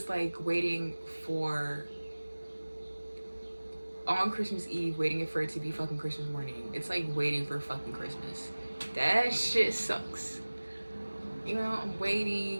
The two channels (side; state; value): both; inverted; correlation -1.00